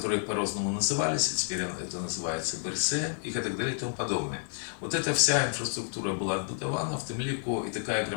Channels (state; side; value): silent; right; digital silence